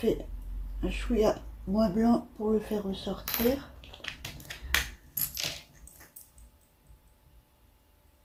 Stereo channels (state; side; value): identical; both; correlation 1.00